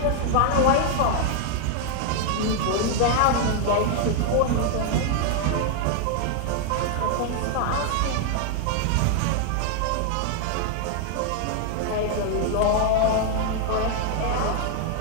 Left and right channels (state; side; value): different; both; correlation 0.00